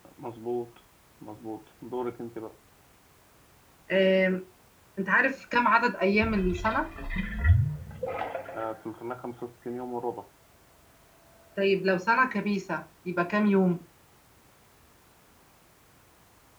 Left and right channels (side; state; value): both; identical; correlation 1.00